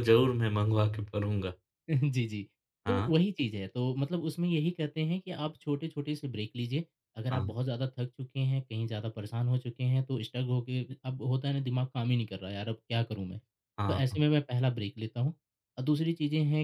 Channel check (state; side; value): identical; both; correlation 1.00